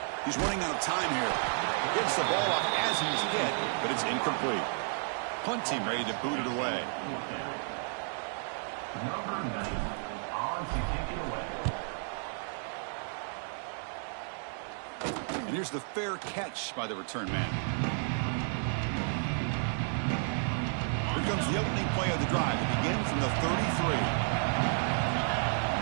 He's running out of time here. Gets the ball up as he's hit, but it's incomplete. Punt team ready to boot it away. Number 9 on to kick it away. And here's the fair catch by the return man. Here comes the opening play of the drive. It begins from the 33.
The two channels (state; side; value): silent; left; 56 dB below the other